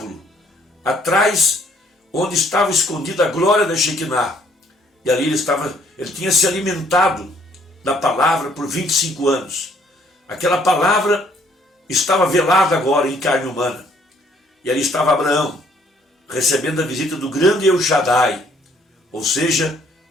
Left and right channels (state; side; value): normal; both; correlation 0.64